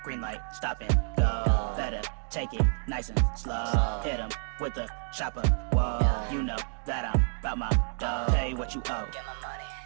green light, stop and go. Better take it nice and slow. Hit 'em with the chopper. Whoa, you know that I'm about my dough. Pay what you owe. Get my money.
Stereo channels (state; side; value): silent; left; 56 dB below the other